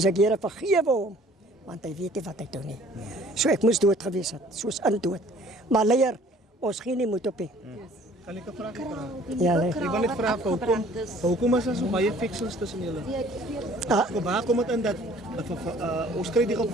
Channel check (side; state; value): both; normal; correlation 0.54